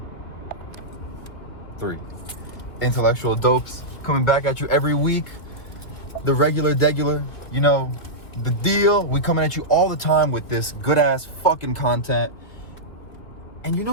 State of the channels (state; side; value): late; right; 2.6 ms